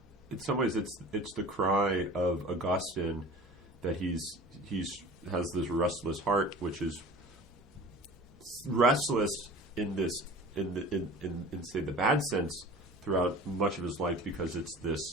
some ways it's the cry of Augustine that he's has this restless heart, which is restless in say the bad sense throughout much of his life, because it's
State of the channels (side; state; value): both; normal; correlation 0.41